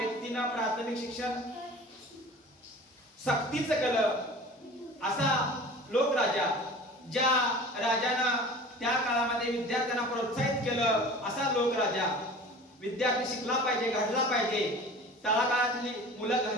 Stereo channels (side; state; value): both; normal; correlation 0.41